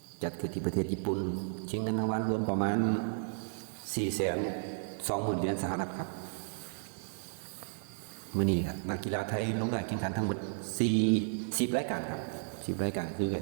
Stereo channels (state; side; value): silent; left; 55 dB below the other